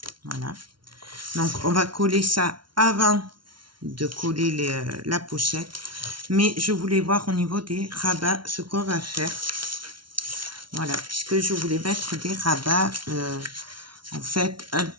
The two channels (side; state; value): left; late; 0.73 ms